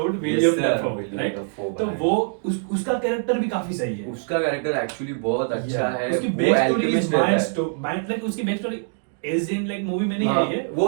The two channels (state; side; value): silent; left; 63 dB below the other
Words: William Dafoe, right? तो वो उसका कैरेक्टर भी काफी सही है, उसका कैरेक्टर एक्चुअली बहुत अच्छा है। उसकी back story is mind like उसकी back story as in like movie में नहीं आई है, वो